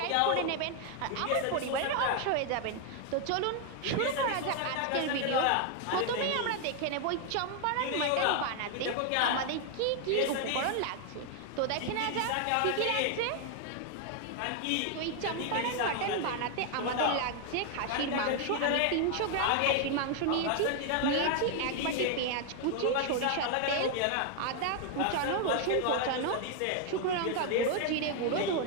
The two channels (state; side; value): different; both; correlation 0.00